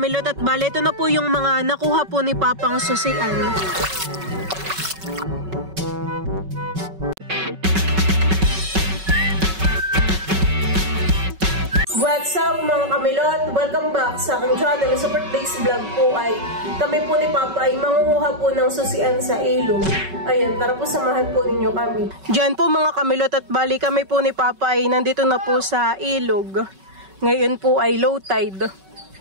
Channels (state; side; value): late; left; 5.3 ms